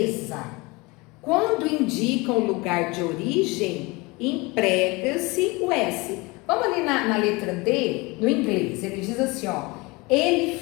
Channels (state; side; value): quieter; right; 24.9 dB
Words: quando indicam lugar de origem, emprega-se o S. Vamos ali na letra D, no inglês, ele diz assim, ó, ele